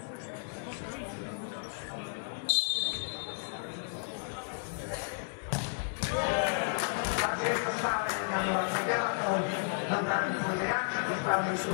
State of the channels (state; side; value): silent; right; digital silence